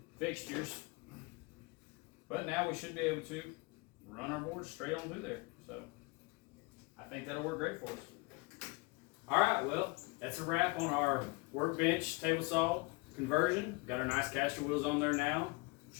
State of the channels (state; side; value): quieter; right; 26.4 dB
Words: fixtures. But now we should be able to run our board straight on through there. So I think that'll work great for us. All right, well, that's a wrap on our Workbench table saw conversion. Got our nice caster wheels on there now.